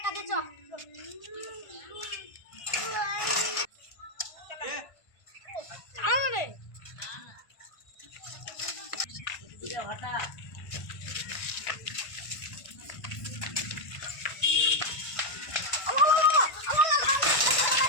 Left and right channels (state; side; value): late; right; 1.5 ms